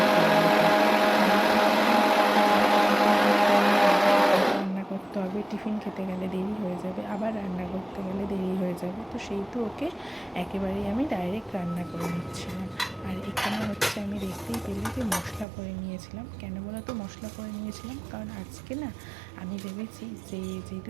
রান্না করতে হবে, টিফিন খেতে গেলে দেরি হয়ে যাবে, আবার রান্না করতে গেলে দেরি হয়ে যাবে। তো সেই তো ওকে একেবারেই আমি ডাইরেক্ট রান্না করে নিচ্ছিলাম। আর এখানে হচ্ছে আমি দেখতেই পেলে যে মশলা করে নিয়েছিলাম। কেন বলো তো মশলা করে নিয়েছিলাম? কারণ আজকে না আমি ভেবেছি যে যেহেতু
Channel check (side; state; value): left; drops out; at 15.5 s